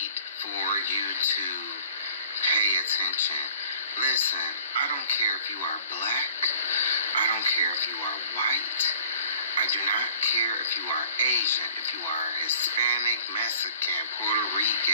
for you to pay attention. Listen, I don't care if you are black. I don't care if you are white. I do not care if you are Asian, if you are Hispanic, Mexican, Puerto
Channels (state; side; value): inverted; both; correlation -0.50